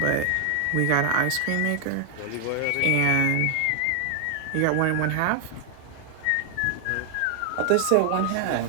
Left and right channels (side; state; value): both; different; correlation 0.00